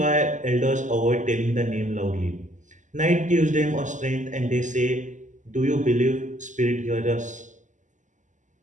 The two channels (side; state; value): left; late; 0.36 ms